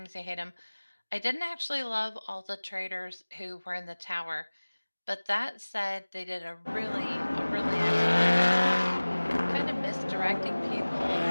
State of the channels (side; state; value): both; inverted; correlation -1.00